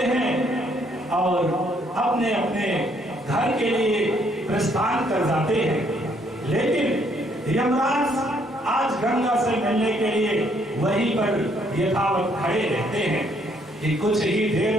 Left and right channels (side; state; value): both; normal; correlation 0.68